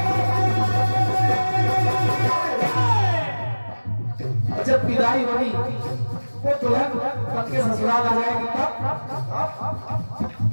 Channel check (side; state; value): both; inverted; correlation -1.00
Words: जब विदाई होगी वो दुल्हन पति के ससुराल आ जाएगी, तब